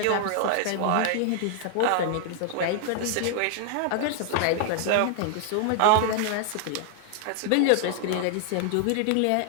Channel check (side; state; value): both; different; correlation 0.00